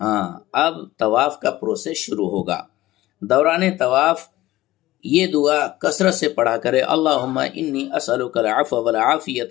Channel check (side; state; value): right; quieter; 16.6 dB